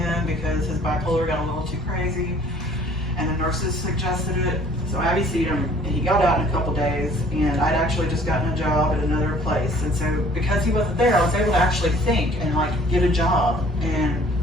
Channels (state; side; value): normal; both; correlation 0.54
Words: because his bipolar got a little too crazy, and the nurses suggested it. So I IVC'd him, and he got out in a couple days, and I'd actually just gotten a job at another place. And so because he wasn't there, I was able to actually think and get a job and